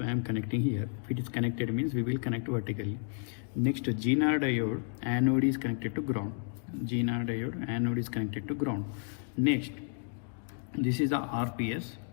I am connecting here. If it is connected means we will connect vertically. Next, GNR diode anode is connected to ground. GNR diode anode is connected to ground. Next, this is the RPS.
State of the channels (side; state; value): right; silent; 57 dB below the other